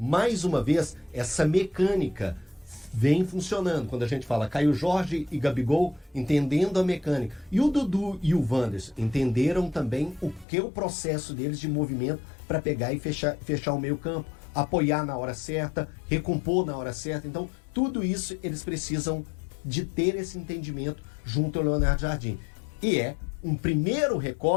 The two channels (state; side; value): drops out; right; at 10.5 s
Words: uma vez, essa mecânica vem funcionando. Quando a gente fala Caio Jorge e Gabigol entendendo a mecânica. E o Dudu e o Wanderson entenderam também o que é o processo deles de movimento para pegar e fechar o meio campo, apoiar na hora certa, recompor na hora certa. Então, tudo isso eles precisam de ter esse entendimento junto ao Leonardo Jardim. E é um primeiro